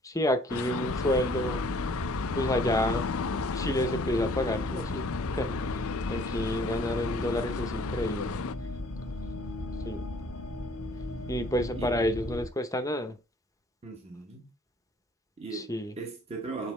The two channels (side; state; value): both; normal; correlation 0.58